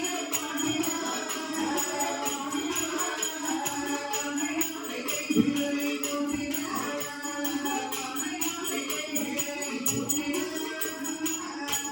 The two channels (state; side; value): identical; both; correlation 1.00